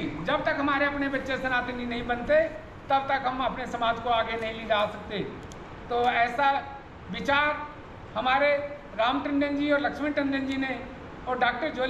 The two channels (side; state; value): both; identical; correlation 1.00